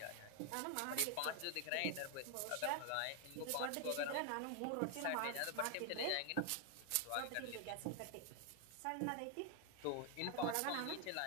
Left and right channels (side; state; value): both; different; correlation 0.00